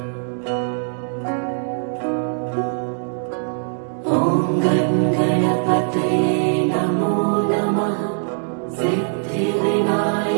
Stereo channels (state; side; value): silent; left; digital silence